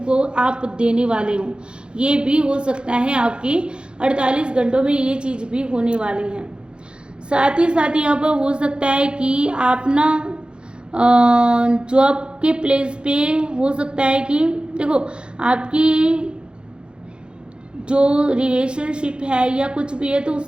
आप देने वाले हो, ये भी हो सकता है। आपकी 48 घंटों में ये चीज़ भी होने वाली है। साथ ही साथ यहाँ पर हो सकता है कि आप ना जॉब के प्लेस पे हो सकता है कि देखो आपकी जो रिलेशनशिप है या कुछ भी है तो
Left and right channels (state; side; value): late; left; 0.053 ms